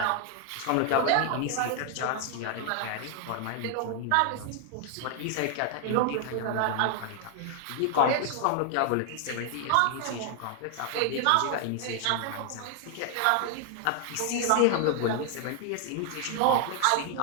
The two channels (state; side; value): different; both; correlation 0.00